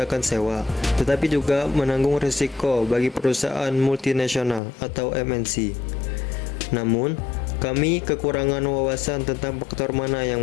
sewa, tetapi juga menanggung risiko bagi perusahaan multinasional atau MNC. Namun, kami kekurangan wawasan tentang faktor mana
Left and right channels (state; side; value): drops out; right; at 4.6 s